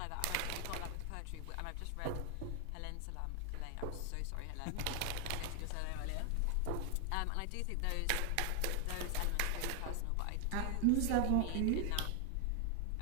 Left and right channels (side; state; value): both; different; correlation 0.00